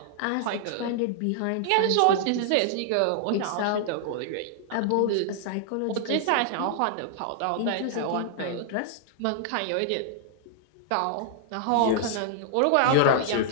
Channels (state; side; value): different; both; correlation -0.01